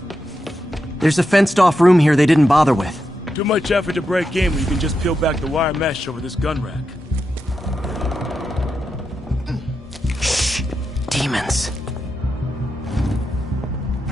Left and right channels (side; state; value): both; normal; correlation 0.87